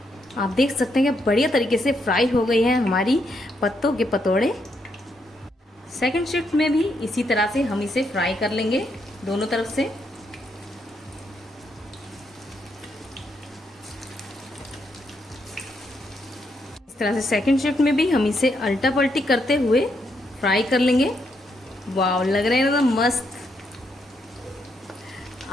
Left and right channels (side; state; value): both; normal; correlation 0.78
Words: आप देख सकते हैं कि बढ़िया तरीके से फ्राई हो गई है हमारी पत्तों के पतोड़े। सेकंड शिफ्ट में भी इसी तरह से हम इसे फ्राई कर लेंगे दोनों तरफ से। तरह से सेकंड शिफ्ट में भी हम इसे अल्टा पल्टी करते हुए फ्राई कर लेंगे। वाव, लग रहे हैं एकदम मस्त,